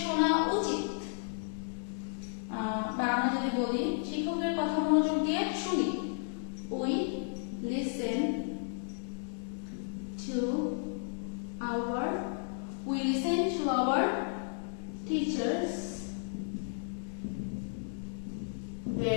শোনা উচিত, বা আমরা যদি বলি শিক্ষকের কথা মনোযোগ দিয়ে শুনি, we listen to our teachers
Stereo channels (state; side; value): silent; right; digital silence